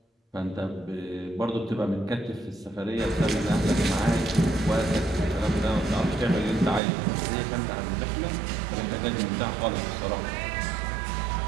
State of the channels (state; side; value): drops out; left; at 6.8 s